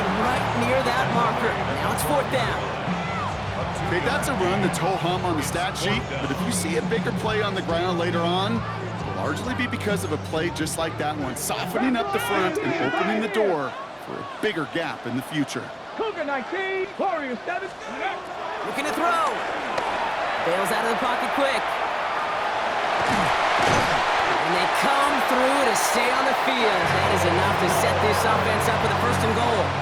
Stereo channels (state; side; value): identical; both; correlation 1.00